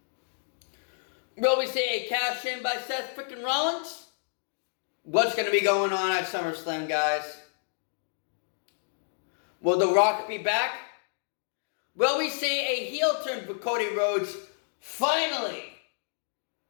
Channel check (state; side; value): silent; right; digital silence